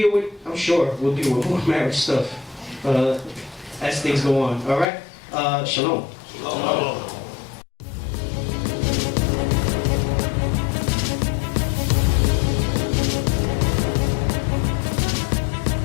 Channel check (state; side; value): drops out; right; at 4.9 s